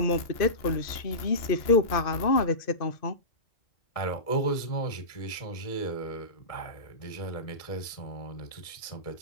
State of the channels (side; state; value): right; late; 2.5 ms